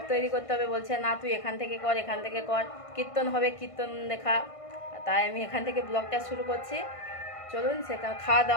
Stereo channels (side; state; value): right; late; 1.5 ms